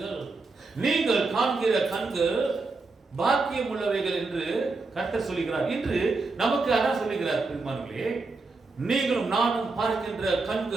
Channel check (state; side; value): quieter; left; 3.8 dB